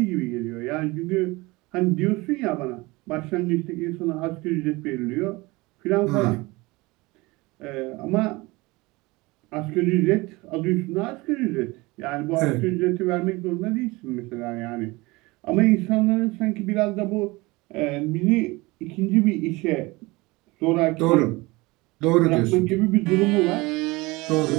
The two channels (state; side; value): quieter; left; 22.8 dB